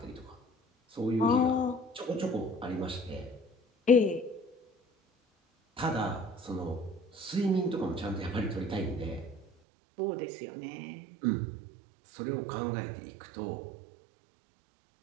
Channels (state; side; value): drops out; left; at 9.5 s